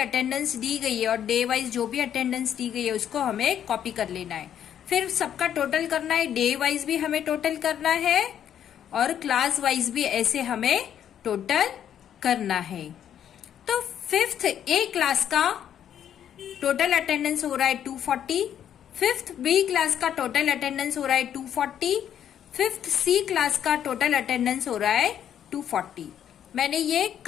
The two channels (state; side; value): quieter; right; 9.7 dB